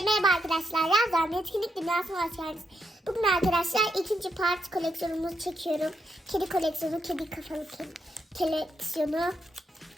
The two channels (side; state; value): both; normal; correlation 0.81